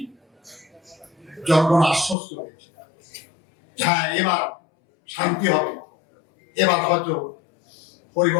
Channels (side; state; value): right; drops out; at 2.1 s